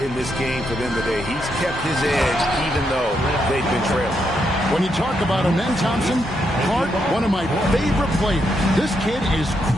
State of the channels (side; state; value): both; normal; correlation 0.80